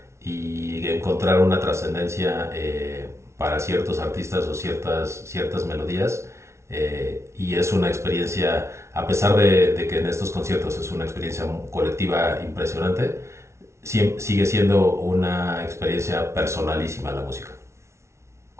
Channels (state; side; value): late; left; 0.13 ms